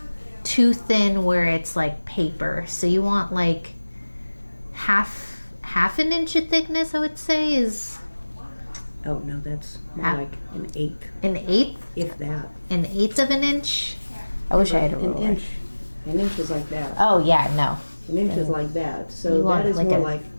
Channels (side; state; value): both; inverted; correlation -1.00